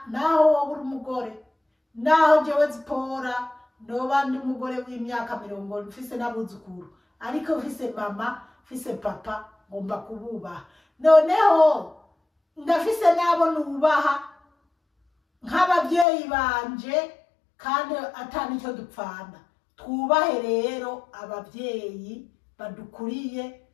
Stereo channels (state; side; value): drops out; right; at 16.1 s